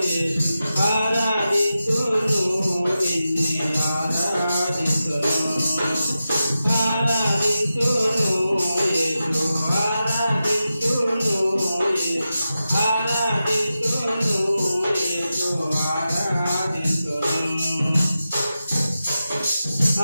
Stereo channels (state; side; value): inverted; both; correlation -0.92